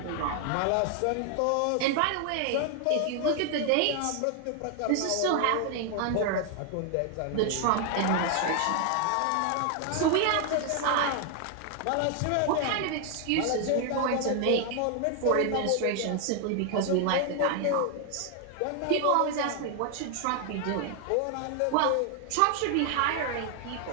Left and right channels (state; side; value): different; both; correlation 0.00